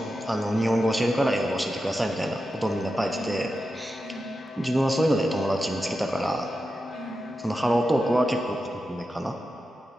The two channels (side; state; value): both; normal; correlation 0.90